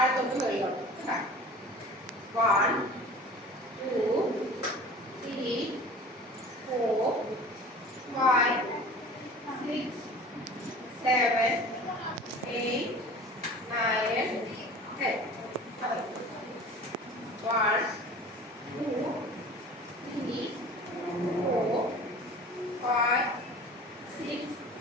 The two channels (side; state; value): both; normal; correlation 0.41